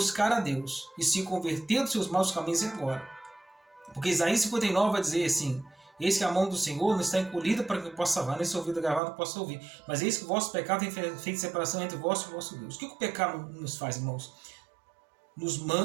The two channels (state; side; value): drops out; left; at 9.0 s